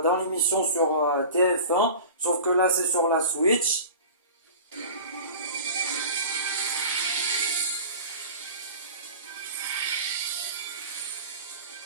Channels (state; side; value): inverted; both; correlation -0.37